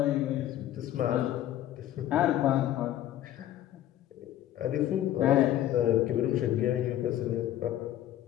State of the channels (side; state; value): right; quieter; 12.7 dB